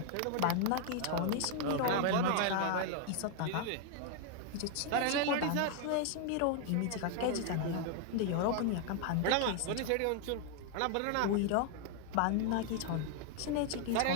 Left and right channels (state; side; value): different; both; correlation 0.00